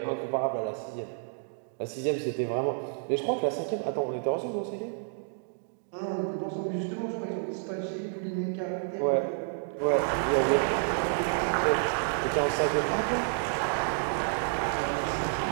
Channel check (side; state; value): left; silent; digital silence